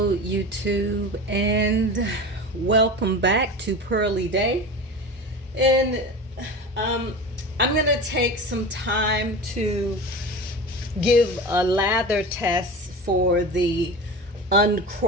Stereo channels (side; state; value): both; normal; correlation 0.30